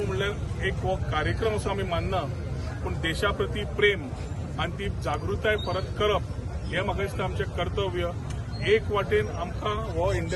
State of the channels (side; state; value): both; identical; correlation 1.00